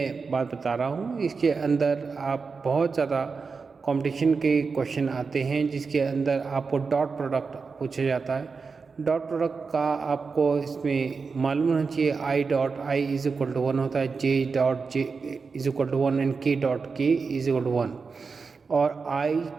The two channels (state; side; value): quieter; left; 4.9 dB